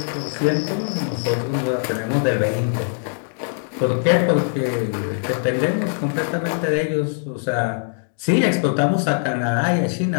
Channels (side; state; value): right; silent; digital silence